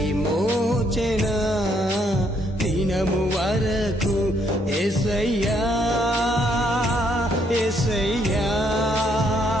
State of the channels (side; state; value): both; normal; correlation 0.70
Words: దినము వరకు యేసయ్యా యేసయ్యా